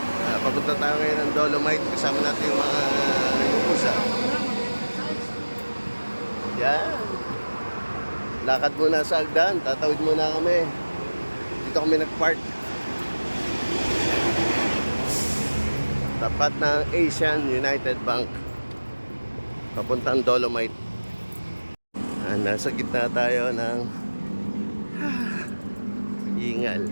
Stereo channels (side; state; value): both; inverted; correlation -1.00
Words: Papunta tayo ngayon ng Dolomite. Kasama natin yung mga nagpupusa. Yan. Lakad muna sa Agdan. Tatawid muna kami. Dito kami nag-park. Tapat ng Asian United Bank. Papuntang Dolomite. Nasa gitna tayo ng Ingal.